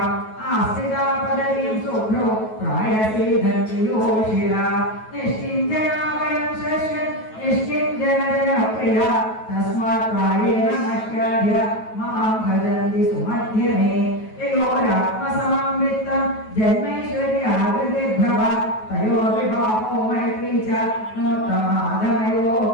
ആസ്ഥിതാ പദവീം ശുഭ്രോ പ്രായസീധന്യോഷില നിഷ്കിഞ്ചനാമയം ശശ്വൻ നിഷ്കിഞ്ചനജനപ്രിയ തസ്മാത് പ്രായേണ നശ്യാദ്യ മാം ഭജന്തി സുമധ്യമേ യയോരാത്മസമം വിത്തം ജന്മൈശ്വര്യാകൃതിർഭവ തയോ വിഭാവോ മൈത്രീ ച നോത്തമാധമയോ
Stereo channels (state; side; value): late; right; 9.3 ms